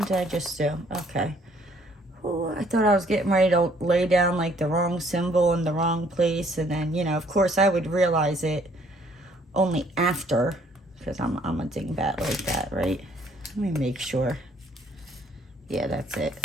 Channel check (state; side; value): normal; both; correlation 0.62